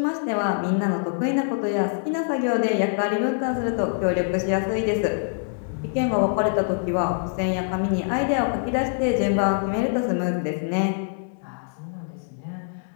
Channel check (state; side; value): silent; right; 62 dB below the other